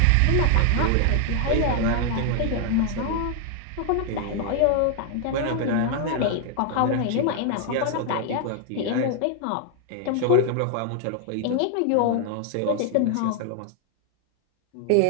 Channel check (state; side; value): different; both; correlation 0.00